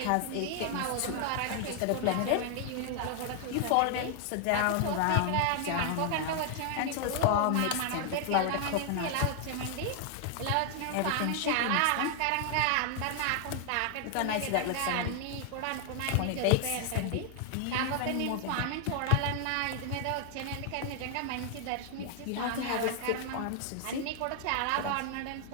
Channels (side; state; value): both; different; correlation 0.00